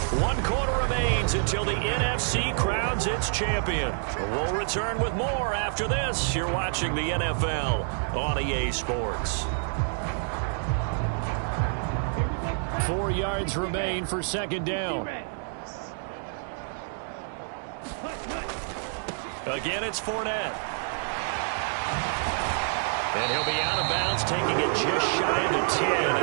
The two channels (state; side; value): silent; left; digital silence